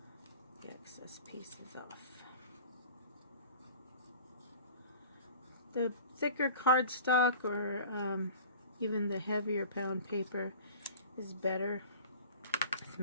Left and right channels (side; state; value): both; inverted; correlation -0.42